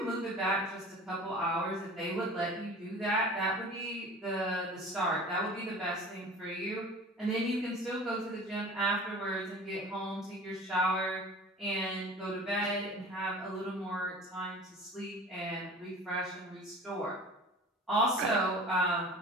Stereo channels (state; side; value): normal; both; correlation 0.41